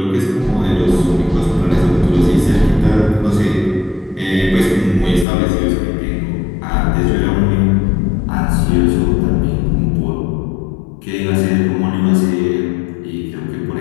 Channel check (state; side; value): drops out; right; at 5.2 s